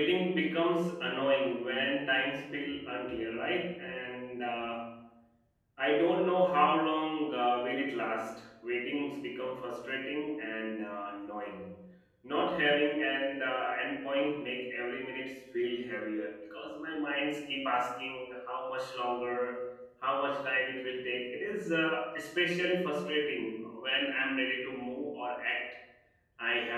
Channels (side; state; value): both; identical; correlation 1.00